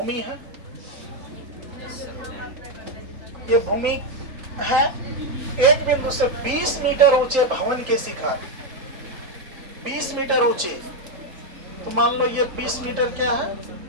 है, ये भूमि है, एक बिंदु से 20 मीटर ऊंचे भवन के शिखर, 20 मीटर ऊंचे, तो मान लो ये 20 मीटर क्या है?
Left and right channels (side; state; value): left; late; 3.8 ms